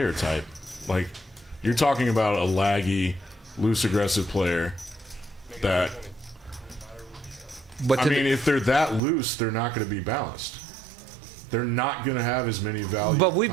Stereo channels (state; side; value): drops out; left; at 9.0 s